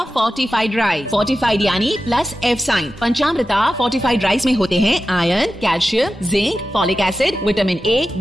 fortified rice. फोर्टिफाइड यानी plus F sign. Panchamrita fortified rice में होते हैं iron, calcium, zinc, folic acid, vitamin A,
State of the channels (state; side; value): normal; both; correlation 0.93